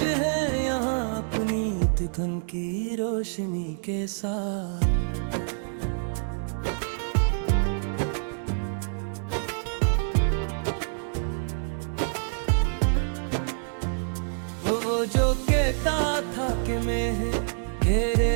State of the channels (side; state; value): left; silent; digital silence